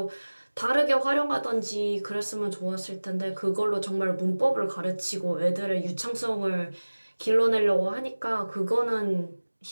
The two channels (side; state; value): both; inverted; correlation -1.00